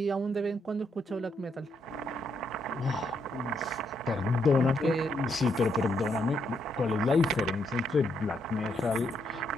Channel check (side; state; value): both; normal; correlation 0.77